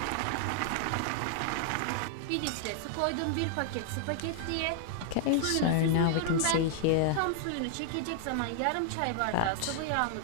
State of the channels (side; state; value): both; different; correlation -0.01